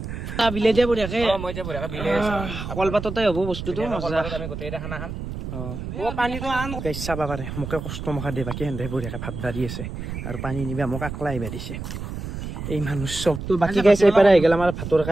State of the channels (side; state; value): right; noise; rumble, 7 dB below the sound